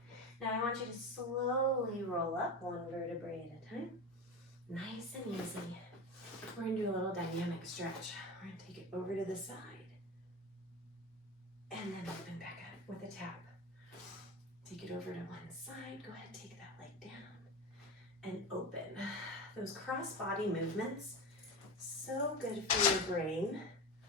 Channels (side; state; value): both; normal; correlation 0.25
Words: Now I want you to slowly roll up one vertebrae at a time. Nice and easy. We're going to do a little dynamic stretch. We're going to take it over to the side. And then open back up with a tap. Take it over to one side. Go ahead and take that leg down. And open. Those cross body movements, so good for your brain.